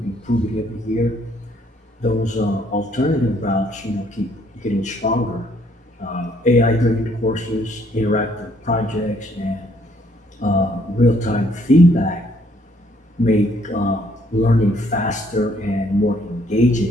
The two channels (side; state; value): both; normal; correlation 0.66